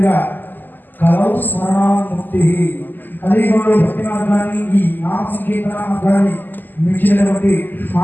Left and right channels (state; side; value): late; right; 0.088 ms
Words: కలవు స్మరణాముక్తి కలియుగంలో భక్తి మార్గాన్ని ఈ నామ సంకీర్తన మార్గాన్ని మించినటువంటి